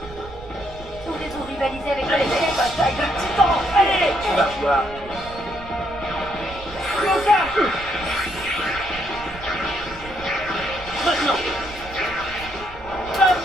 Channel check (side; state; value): right; noise; rumble, 16 dB below the sound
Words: Voulez-vous rivaliser avec Allez, les bataille de titans! Allez! Tu vas voir. Maintenant.